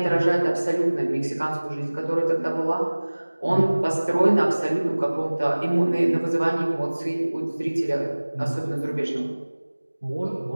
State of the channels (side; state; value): both; inverted; correlation -1.00